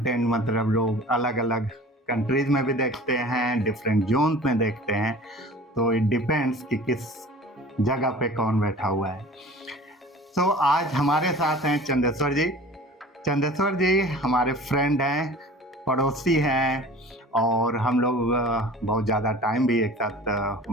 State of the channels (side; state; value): both; normal; correlation 0.42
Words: मतलब लोग अलग अलग कंट्रीज में भी देखते हैं, डिफरेंट जोन में देखते हैं, तो इट डिपेंड्स कि किस जगह पे कौन बैठा हुआ है। तो आज हमारे साथ हैं चंदेश्वर जी। चंदेश्वर जी हमारे फ्रेंड हैं, पड़ोसी हैं, और हम लोग बहुत ज़्यादा टाइम भी एक साथ